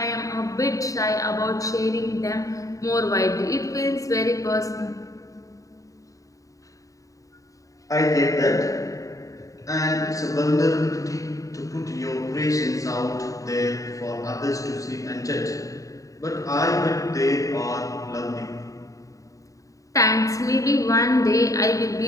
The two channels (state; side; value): late; right; 0.16 ms